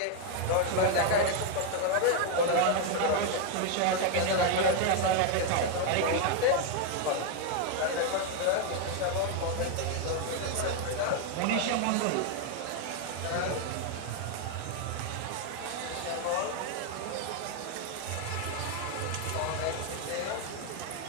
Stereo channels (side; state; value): both; different; correlation 0.01